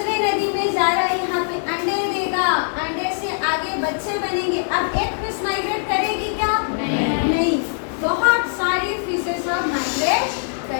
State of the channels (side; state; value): right; silent; 65 dB below the other